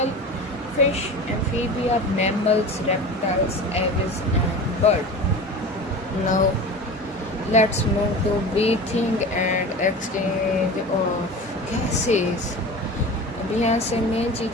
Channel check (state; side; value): normal; both; correlation 0.33